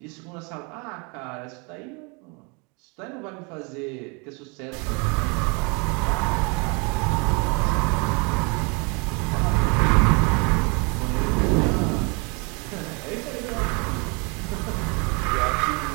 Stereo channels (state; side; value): quieter; left; 31.5 dB